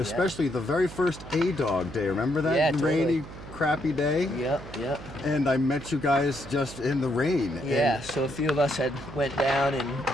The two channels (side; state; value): right; noise; hum, 14 dB below the sound